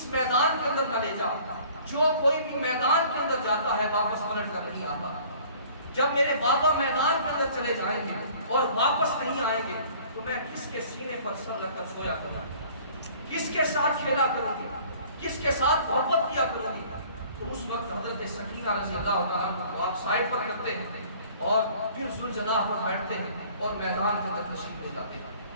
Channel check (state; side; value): inverted; both; correlation -0.51